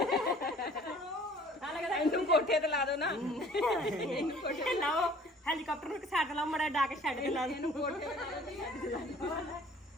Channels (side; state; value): both; normal; correlation 0.52